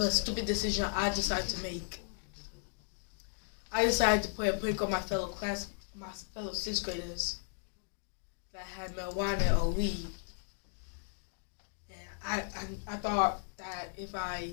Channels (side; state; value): right; silent; digital silence